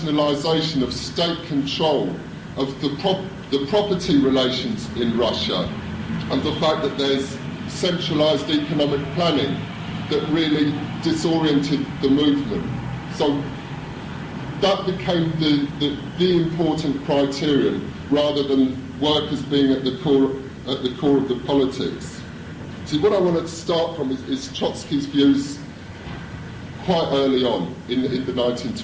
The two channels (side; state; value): both; identical; correlation 1.00